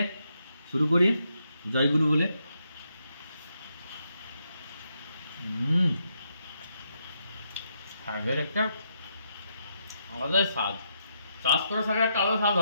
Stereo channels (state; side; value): inverted; both; correlation -0.79